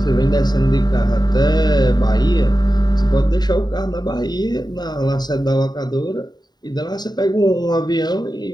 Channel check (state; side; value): late; right; 0.20 ms